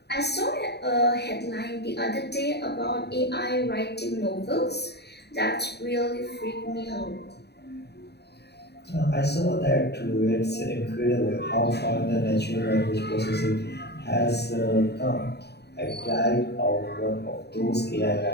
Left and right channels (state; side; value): late; right; 0.48 ms